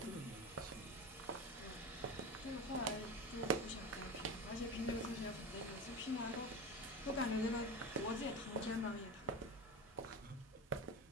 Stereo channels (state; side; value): normal; both; correlation 0.24